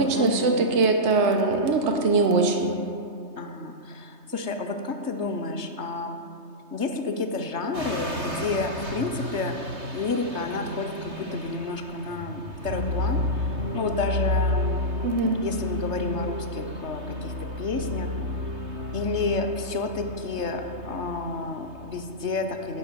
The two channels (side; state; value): left; late; 3.3 ms